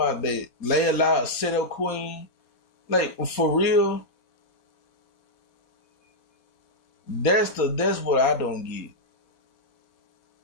that Layla set up queen, like for real. That's what I don't get.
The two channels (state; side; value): late; right; 4.2 ms